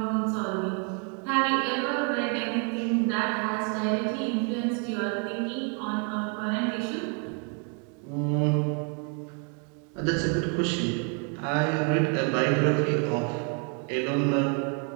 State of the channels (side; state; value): left; quieter; 38.9 dB